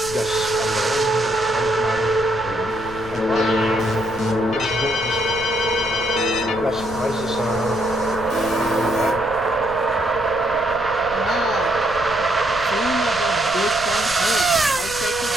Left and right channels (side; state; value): left; noise; rumble, 15 dB below the sound